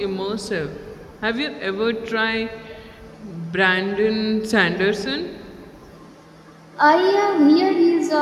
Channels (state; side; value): identical; both; correlation 1.00